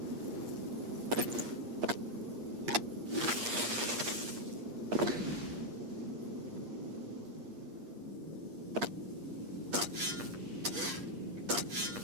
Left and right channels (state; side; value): late; left; 8.5 ms